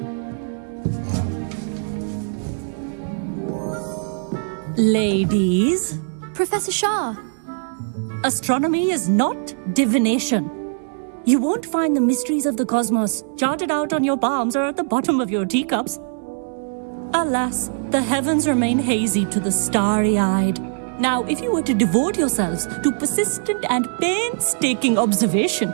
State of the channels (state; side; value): silent; left; digital silence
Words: Ladies, Professor Shah. astronomy is not divination. You won't find the mysteries of the cosmos charted out on your palms or at the bottom of your teacups. Alas, the heavens remain hazy to the starry-eyed. Now, if you were to devote yourselves to persistent and painstaking observation,